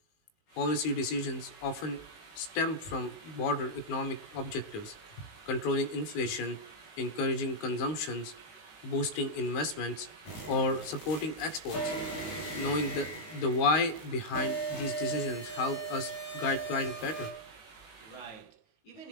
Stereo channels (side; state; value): right; late; 19 ms